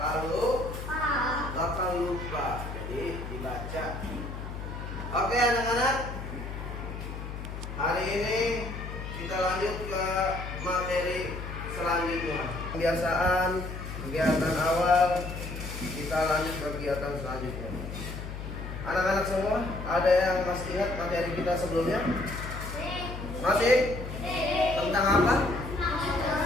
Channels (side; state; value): left; noise; hum, 8 dB below the sound